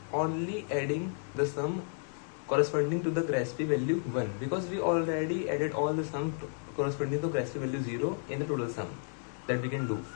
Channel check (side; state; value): right; silent; 56 dB below the other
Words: only adding the sum corresponding to the Grasp value 1, because we already added all the sum corresponding to Grasp value 0 in the total sum that we can do.